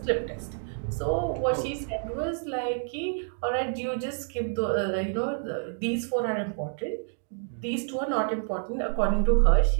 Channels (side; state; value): left; silent; digital silence